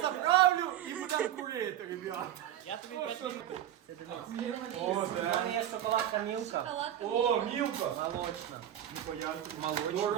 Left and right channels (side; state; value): left; quieter; 11.5 dB